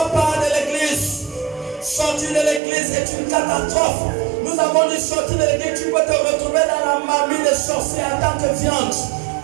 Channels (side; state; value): left; drops out; at 2.6 s